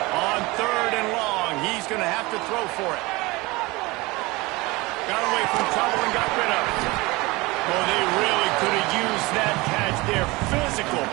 Going to have to throw for it. Got away from trouble and got rid of it. Well, they really could have used that catch there. Physical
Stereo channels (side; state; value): left; quieter; 22.8 dB